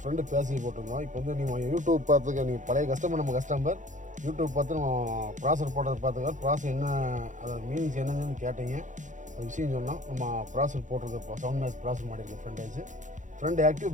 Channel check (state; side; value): late; left; 0.36 ms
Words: ஃப்ரெண்டு பேசி போட்டிருந்தோம். இப்போ வந்து நீங்கள் யூடியூப் பார்த்துக்க நீங்கள் பழைய கஸ்டமர் நம்ம கஸ்டமர் யூடியூப் பார்த்து நம்ம ப்ராசர் போட்டதை பார்த்துக்க ப்ராசர் என்ன அதோட மீனிங்ஸ் என்னன்னு கேட்டீங்க. அது விஷயம் சொன்னோம். நம்ம ப்ராசர் போட்டிருக்க சவுண்ட் மேஸ் ப்ராசர் மாட்டியிருக்கோம். ஃப்ரண்ட் ஆக்டிவ்